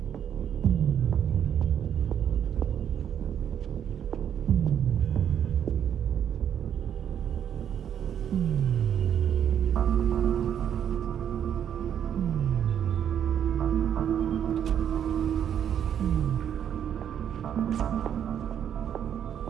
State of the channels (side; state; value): left; quieter; 9.2 dB